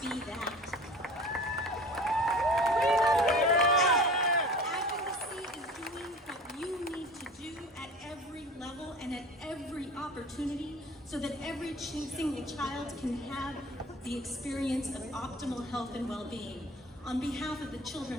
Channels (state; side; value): normal; both; correlation 0.41